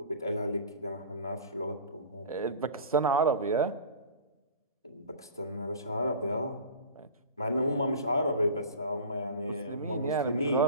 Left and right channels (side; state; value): both; inverted; correlation -0.39